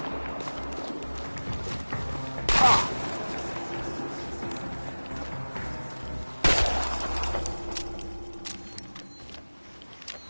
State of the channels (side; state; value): both; inverted; correlation -1.00